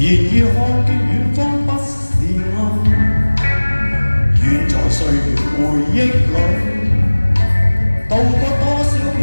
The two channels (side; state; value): both; inverted; correlation -1.00